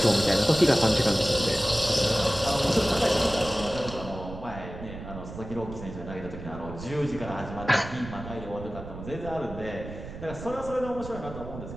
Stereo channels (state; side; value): noise; right; rumble, 11 dB below the sound